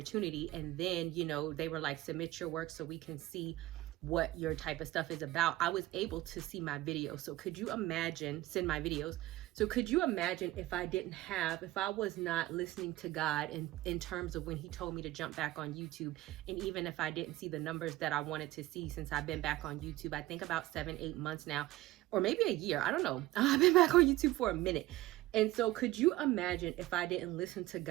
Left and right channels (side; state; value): left; quieter; 17.2 dB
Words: And then, you know, they were like, submit your work so we can see what your type of stuff is about. I was able to see my videos. So could you imagine, send my videos. So could you imagine if I was not listening to God in terms of when he told me to jump back on YouTube, and even if I didn't see the numbers that I wanted to see since I've been back on YouTube, I think about 7-8 months now, or maybe a year, I don't know. I've been back on YouTube for a minute. And so could you imagine if I didn't listen to